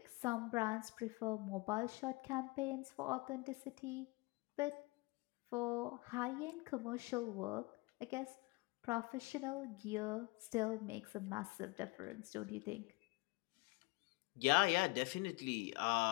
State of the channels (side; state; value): right; quieter; 25.1 dB